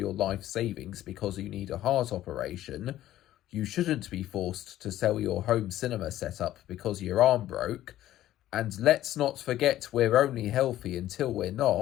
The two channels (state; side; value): quieter; right; 13.6 dB